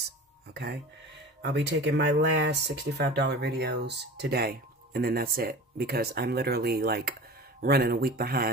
okay? I'll be taking my last $65 videos today, and then that's it, because I'm literally like running a week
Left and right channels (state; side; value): normal; both; correlation 0.36